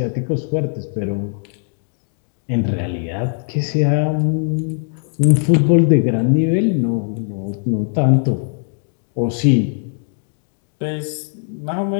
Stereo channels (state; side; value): silent; right; 59 dB below the other